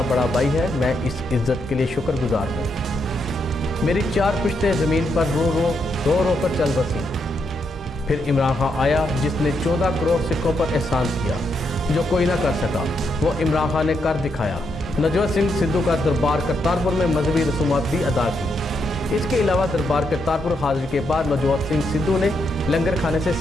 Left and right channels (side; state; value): both; normal; correlation 0.79